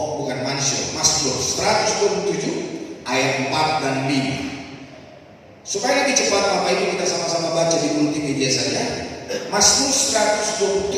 bukan Mazmur 127 ayat 4 dan 5. Supaya lebih cepat Bapak Ibu kita sama-sama baca di multimedia saja. Mazmur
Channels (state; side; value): identical; both; correlation 1.00